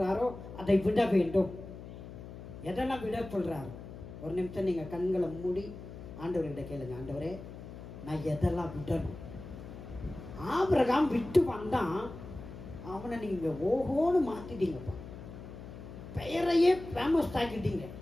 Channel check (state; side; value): noise; left; hum, 13 dB below the sound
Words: அதை விட வேண்டும். எதெல்லாம் விட சொல்றாரோ, ஒரு நிமிஷம் நீங்க கண்களை மூடி ஆண்டவர்கிட்ட கேளுங்க, ஆண்டவரே நான் எதெல்லாம் விடணும்? ஆபிரகாம் விட்டு வந்தான், அவனை நீங்க ஓஹோன்னு மாத்திட்டீங்கப்பா. பெயரையே ஃபேமஸ் ஆக்கிட்டீங்க,